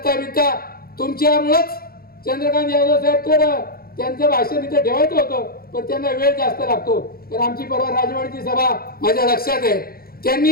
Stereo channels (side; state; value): right; late; 0.44 ms